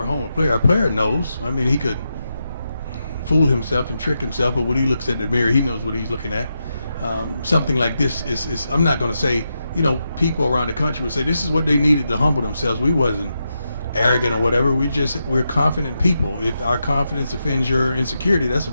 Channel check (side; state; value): both; inverted; correlation -0.86